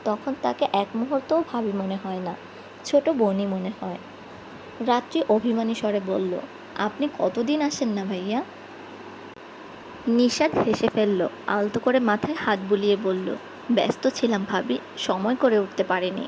তখন তাকে এক মুহূর্তও ভাবি মনে হয় না, ছোট বোনই মনে হয়। রাত্রি অভিমানী স্বরে বলল, আপনি কতদিন আসেন না ভাইয়া? নিশাদ হেসে ফেলল, আলতো করে মাথায় হাত বুলিয়ে বলল, ব্যস্ত ছিলাম ভাবি, সময় করে উঠতে পারিনি।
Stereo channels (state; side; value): identical; both; correlation 1.00